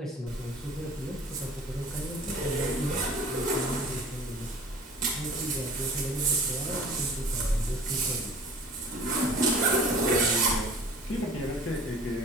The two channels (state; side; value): normal; both; correlation 0.46